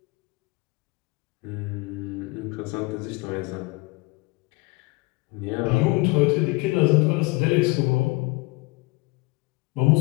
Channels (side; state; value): right; quieter; 25.0 dB